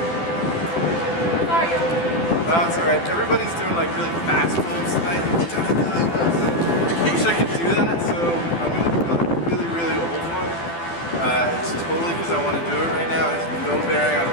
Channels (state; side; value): late; right; 12 ms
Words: That's alright. Everybody's doing like really fast pulls tonight. I wish I could do that, so I'm going to do like a really, really old one. It's totally because I want to do it right now. It has no bearing on